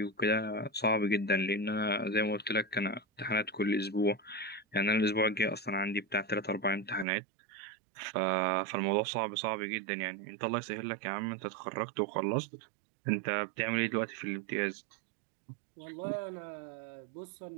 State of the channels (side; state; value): left; drops out; at 7.1 s